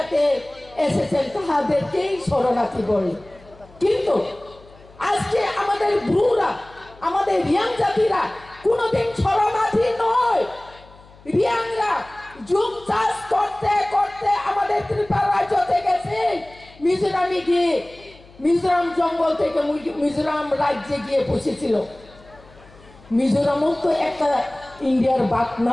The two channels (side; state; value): left; noise; hum, 24 dB below the sound